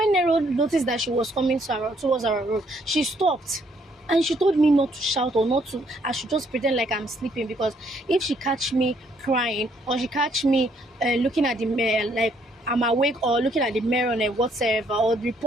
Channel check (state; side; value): normal; both; correlation 0.68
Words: Nero noticed that she was coming towards our room, she stopped. And she told me not to shout or not to, I should just pretend like I'm sleeping, because if she catch me crying or she catch me looking at the mirror like I'm awake or looking at the mirror and whatever, or